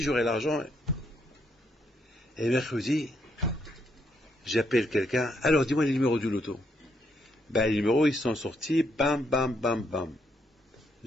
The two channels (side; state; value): both; normal; correlation 0.75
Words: j'aurai l'argent. Et mercredi, j'appelle quelqu'un. Alors, dis-moi les numéros du loto. Les numéros, ils sont sortis. Bam, bam, bam, bam.